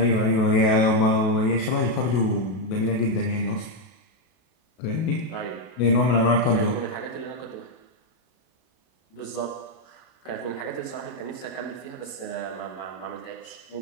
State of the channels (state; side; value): late; right; 32 ms